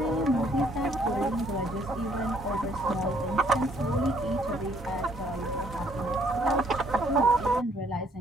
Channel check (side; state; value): both; normal; correlation 0.65